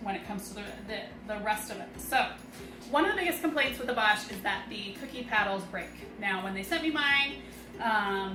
it comes to the rest of it. So one of the biggest complaints with the Bosch is that the cookie paddles break. Now, when they sent me mine,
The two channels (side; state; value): both; identical; correlation 1.00